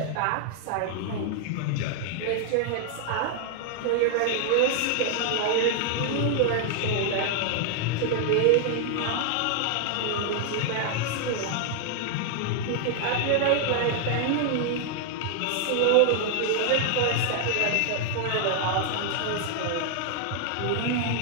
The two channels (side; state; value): both; different; correlation 0.00